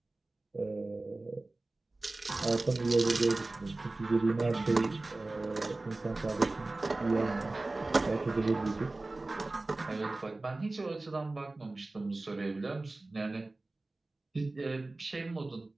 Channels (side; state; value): left; quieter; 3.0 dB